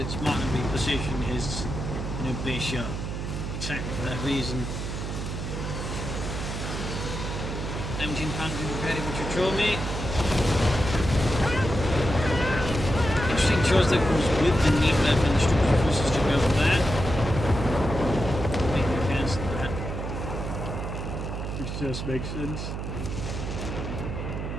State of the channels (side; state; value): right; noise; hum, 5 dB below the sound